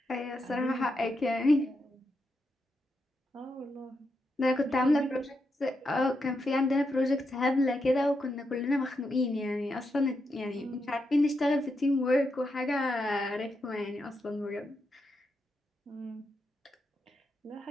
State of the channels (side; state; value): both; normal; correlation 0.84